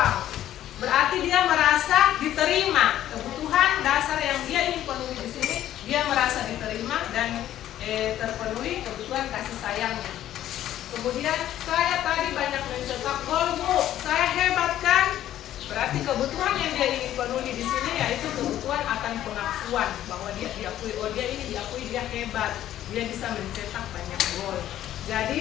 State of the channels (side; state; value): right; quieter; 12.4 dB